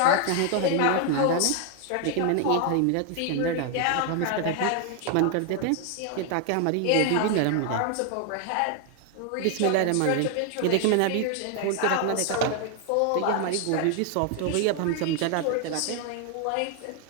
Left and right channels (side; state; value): both; different; correlation 0.00